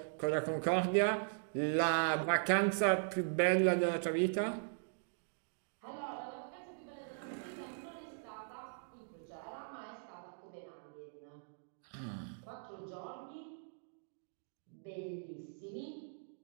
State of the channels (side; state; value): left; silent; digital silence